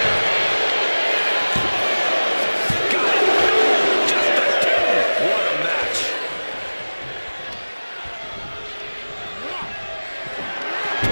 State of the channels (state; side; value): inverted; both; correlation -1.00